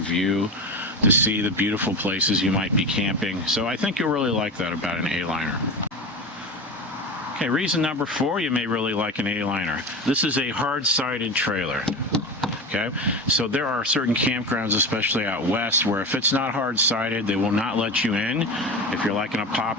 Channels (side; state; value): both; normal; correlation 0.26